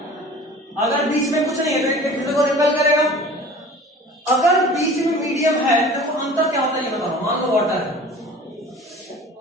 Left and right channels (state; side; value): normal; both; correlation 0.43